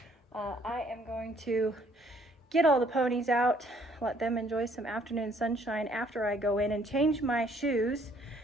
I am going to get all the ponies out, let them enjoy some afternoon sunshine after I go in and change my shoes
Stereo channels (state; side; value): normal; both; correlation 0.63